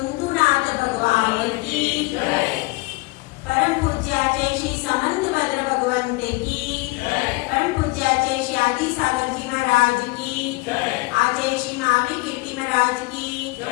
भगवान की जय। परम पूज्याचे श्री समंत भद्र भगवंत की जय। परम पूज्याचे श्री आदि सागर जी महाराज की जय। आचे श्री महावी कीर्ति महाराज की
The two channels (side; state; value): right; quieter; 23.6 dB